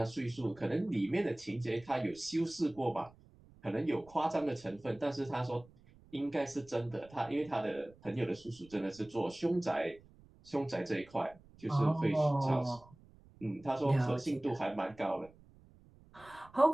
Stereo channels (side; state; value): right; noise; rumble, 25 dB below the sound